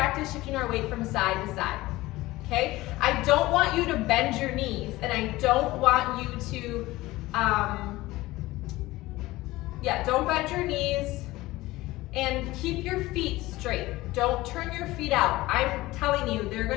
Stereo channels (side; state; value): right; quieter; 18.6 dB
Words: shifting our weight from side to side. Okay? I don't want you to bend your knees, and I don't want you to, don't bend your knees, and keep your feet straight. Don't turn your feet out. I'm telling you, they're